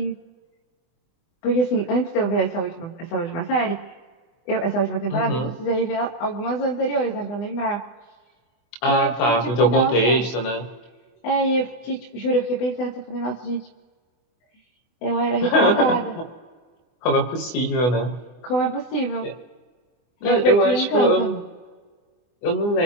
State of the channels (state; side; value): late; right; 24 ms